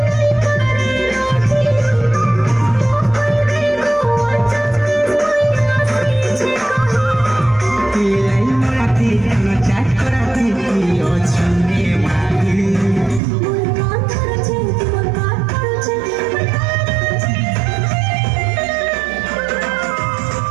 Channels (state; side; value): drops out; left; at 13.2 s